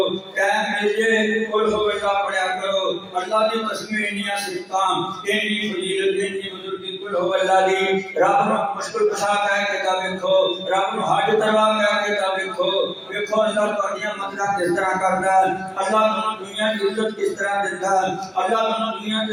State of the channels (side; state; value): both; identical; correlation 1.00